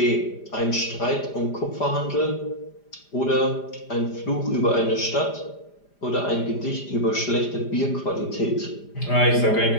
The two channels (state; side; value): late; right; 5.0 ms